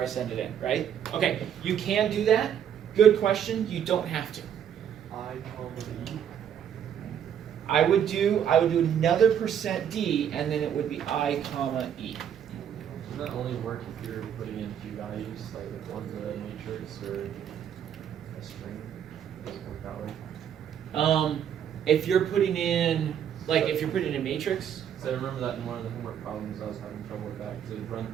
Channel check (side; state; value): left; quieter; 9.1 dB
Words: I send it in, right? Okay, you can do that. Good question. You don't have to. I would do another percent D and then it would be I comma E. Does that only work if you're putting in two values, like if one's a matrix or a string? Doesn't work that way. If you're putting in if you're putting in a matrix, So I remember that in one of the homework problems I was having trouble with that because it would run